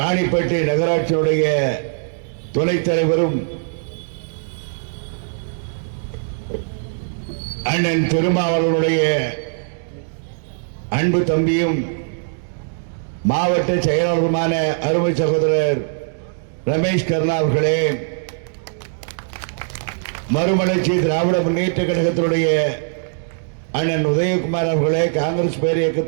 நகராட்சியினுடைய துணைத் தலைவரும் அண்ணன் திருமாவளவனுடைய அன்பு தம்பியும் மாவட்ட செயலாளருமான அருமை சகோதரர் ரமேஷ் கர்ணா அவர்களே, மறுமலர்ச்சி திராவிட முன்னேற்ற கழகத்தினுடைய அண்ணன் உதயகுமார் அவர்களே, காங்கிரஸ் பேர்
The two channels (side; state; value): left; silent; digital silence